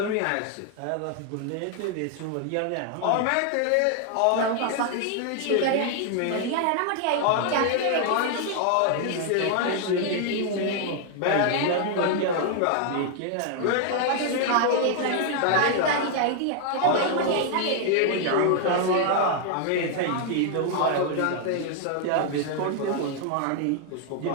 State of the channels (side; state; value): both; different; correlation 0.00